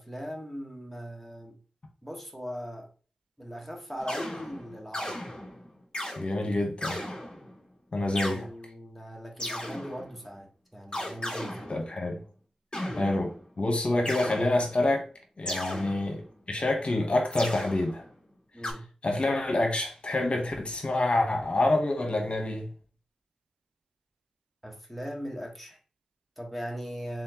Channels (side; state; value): both; normal; correlation 0.91